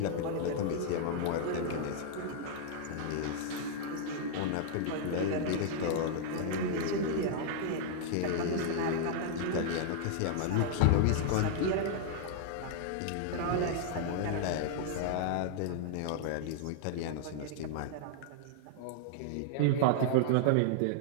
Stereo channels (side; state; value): both; different; correlation -0.01